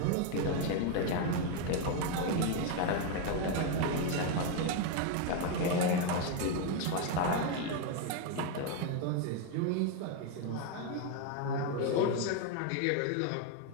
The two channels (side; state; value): both; different; correlation 0.01